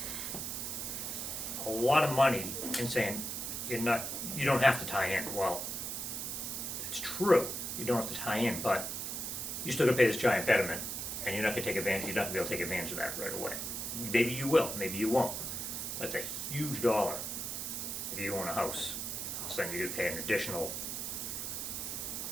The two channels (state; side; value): noise; right; hiss, 4 dB below the sound